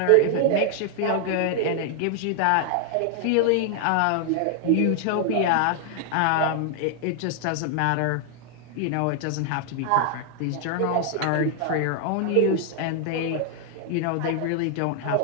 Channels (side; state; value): both; different; correlation 0.00